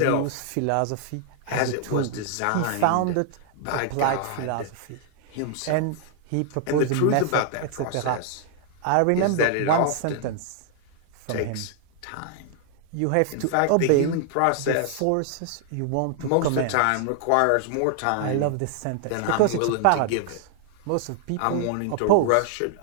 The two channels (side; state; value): both; different; correlation 0.00